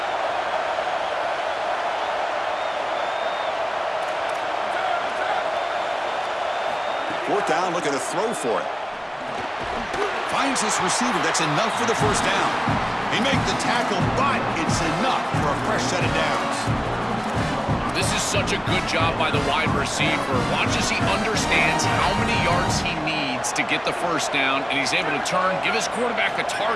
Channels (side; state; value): both; identical; correlation 1.00